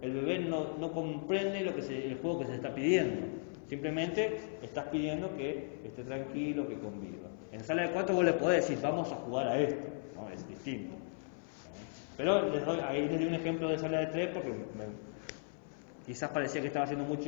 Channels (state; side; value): silent; right; 53 dB below the other